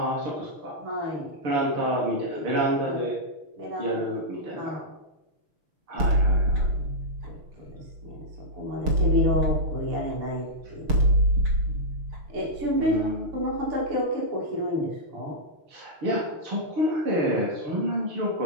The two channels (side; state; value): left; late; 6.5 ms